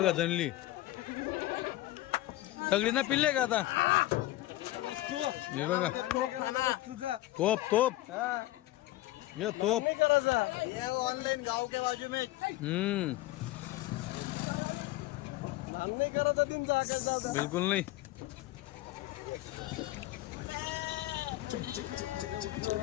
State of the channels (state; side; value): quieter; right; 16.5 dB